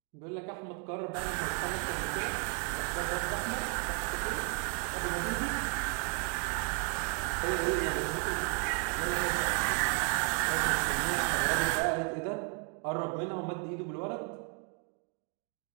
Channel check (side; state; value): left; quieter; 38.8 dB